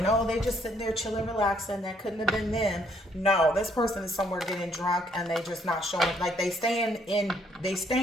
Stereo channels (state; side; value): normal; both; correlation 0.68